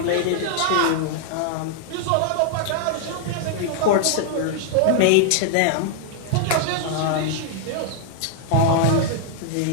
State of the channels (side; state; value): both; different; correlation 0.00